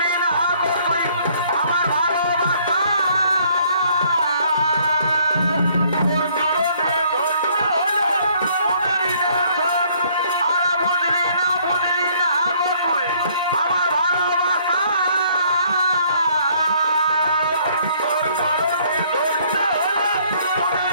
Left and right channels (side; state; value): both; inverted; correlation -0.63